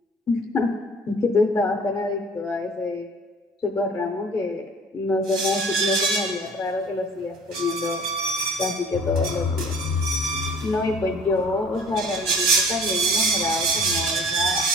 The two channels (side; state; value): both; normal; correlation 0.48